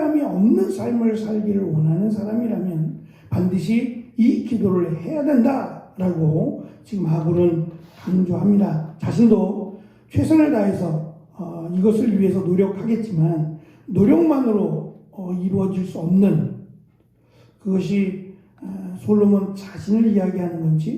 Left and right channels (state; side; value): identical; both; correlation 1.00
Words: 없는 삶을 살기를 원하는 사람이라면 반드시 이 기도를 해야 된다라고 지금 아굴은 강조합니다. 자신도 최선을 다해서 이것을 위해서 노력하겠지만 노력만으로 이루어질 수 없는 그것이 솔로몬 자신을 이야기하는